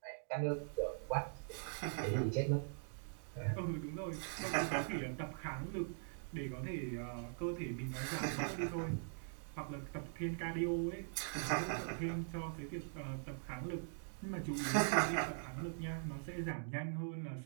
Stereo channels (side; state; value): left; silent; digital silence